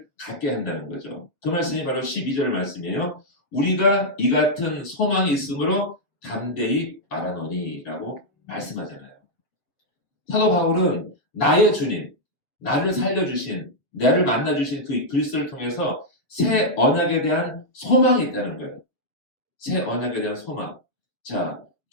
갖게 한다는 거죠. 그 말씀이 바로 12절 말씀이에요. 우리가 이 같은 소망이 있으므로 담대히 말하노니 라고 말씀하잖아요. 사도 바울은 나의 주님, 나를 살려주신, 나를 만나주신 그 그리스도를 통해서 새 언약에 대한 소망이 있다는 거예요. 새 언약에 대한 소망. 자,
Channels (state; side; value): late; right; 7.4 ms